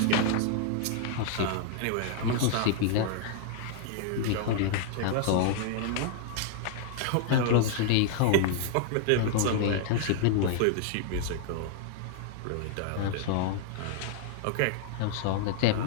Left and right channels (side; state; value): both; different; correlation -0.01